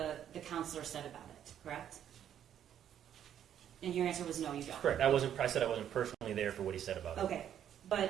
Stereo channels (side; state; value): left; quieter; 9.9 dB